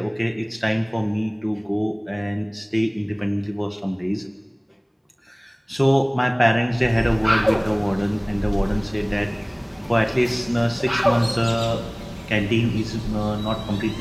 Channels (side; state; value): both; identical; correlation 1.00